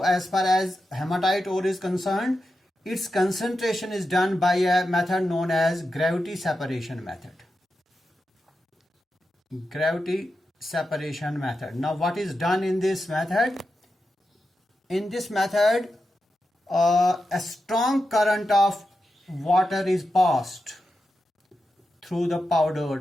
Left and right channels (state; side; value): normal; both; correlation 0.89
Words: as far as hematite ore is concerned, its concentration is done by a method known as gravity separation method. Gravity separation method. Now, what is done in this method? In this method, a strong current of water is passed through the